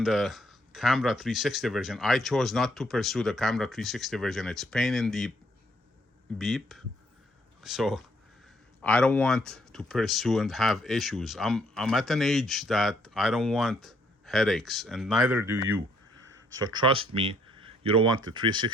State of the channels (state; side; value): normal; both; correlation 0.68